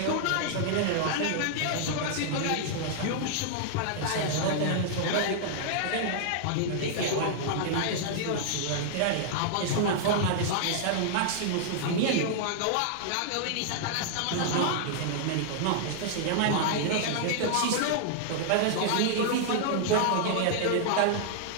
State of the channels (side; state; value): both; different; correlation -0.01